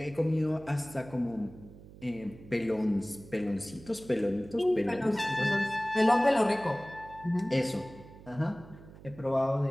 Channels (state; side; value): noise; right; hum, 19 dB below the sound